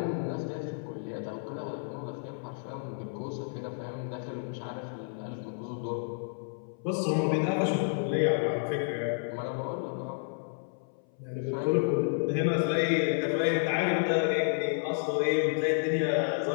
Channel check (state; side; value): silent; right; 57 dB below the other